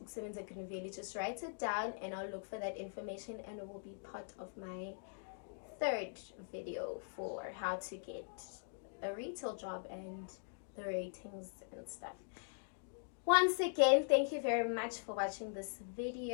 Green Valley, just write it down and I'll look for that information, and it will be part of my third video for how to get a retail job and the ratings and stuff. Once again, thank you very much for watching this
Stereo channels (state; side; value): silent; right; digital silence